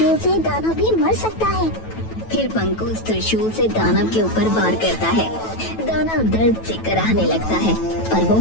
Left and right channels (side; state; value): right; late; 9.1 ms